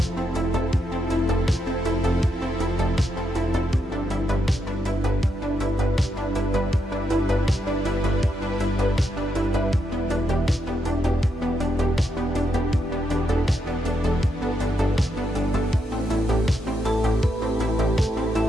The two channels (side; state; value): both; normal; correlation 0.81